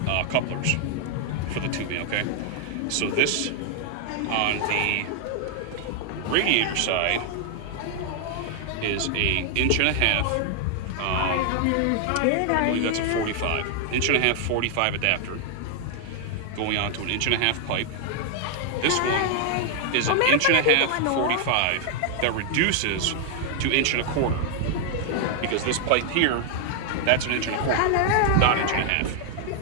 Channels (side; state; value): both; different; correlation 0.00